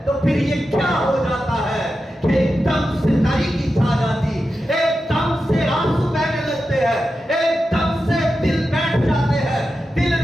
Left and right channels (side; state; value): both; normal; correlation 0.90